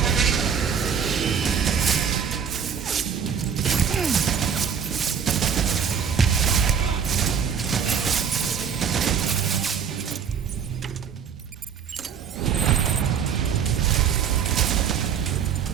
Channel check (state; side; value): quieter; left; 7.3 dB